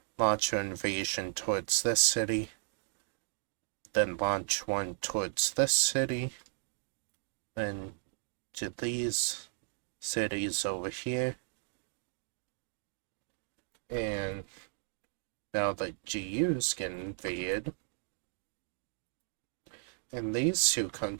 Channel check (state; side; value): silent; left; digital silence